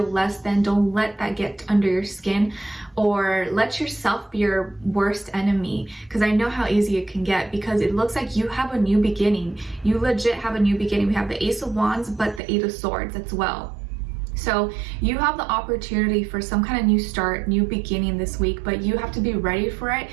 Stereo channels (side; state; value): left; drops out; at 12.4 s